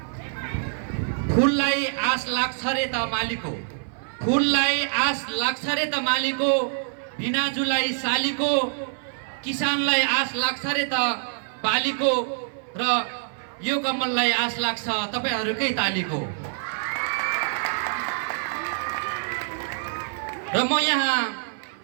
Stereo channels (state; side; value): silent; left; 57 dB below the other